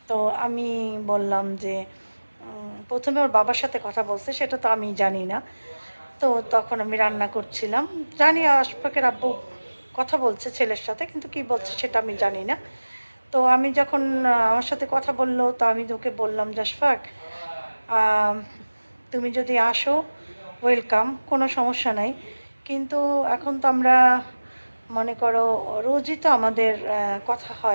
তো আমি বললাম যে প্রথমে ওর বাবার সাথে কথা বলছে, সেটা তো আমি জানি না। তো তখন আমি রান্না করছিলাম, জানি আশফাকের আব্বু কথা বলছে ছেলের সাথে, কিন্তু কি বলছে সেটা আমি জানি না। তো আমি যখন আমার সাথে কথা বললো, তো আমি তোকে বললাম যে আশফাক, আম, তুমি যদি আসো ওয়েলকাম, কোনো সমস্যা নাই। কিন্তু এখন তো আমরা, মনে করো, রোজই তো আমাদের কথা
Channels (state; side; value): inverted; both; correlation -1.00